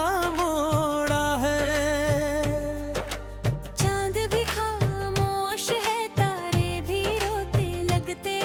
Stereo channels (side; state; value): both; identical; correlation 1.00